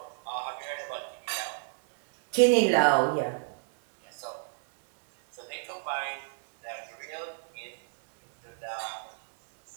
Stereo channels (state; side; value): silent; left; digital silence